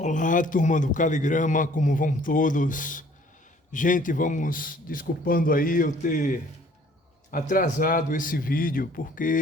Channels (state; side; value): normal; both; correlation 0.56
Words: turma do Caligrama, como vão todos? Gente, vamos desculpando aí eu ter atrasado esse vídeo,